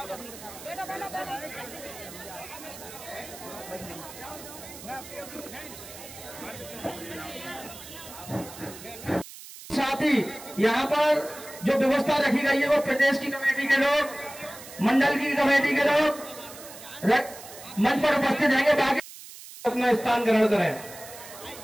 साथ ही यहाँ पर जो व्यवस्था रखी गई है वो प्रदेश की कमेटी के लोग, मंडल की कमेटी के लोग मंच पर उपस्थित रहेंगे। बाकी अपना स्थान ग्रहण करें।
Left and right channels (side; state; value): right; noise; hiss, 15 dB below the sound